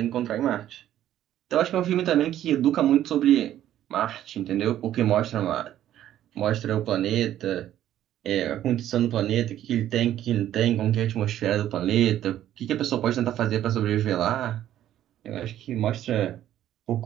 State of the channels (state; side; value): quieter; left; 12.0 dB